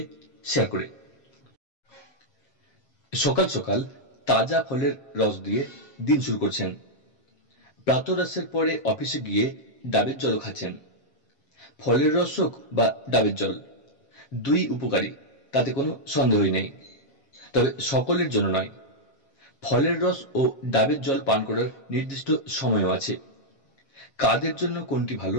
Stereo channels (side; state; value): right; late; 7.4 ms